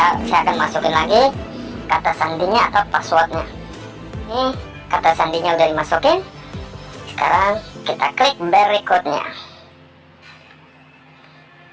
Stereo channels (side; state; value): both; identical; correlation 1.00